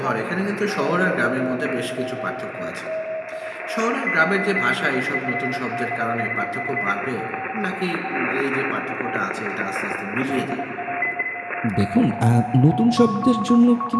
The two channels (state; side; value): identical; both; correlation 1.00